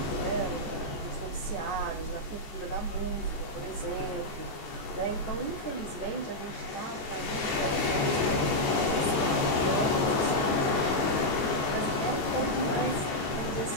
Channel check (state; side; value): late; right; 14 ms